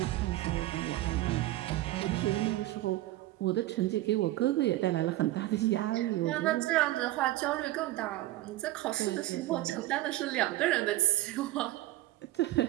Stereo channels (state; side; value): quieter; left; 16.2 dB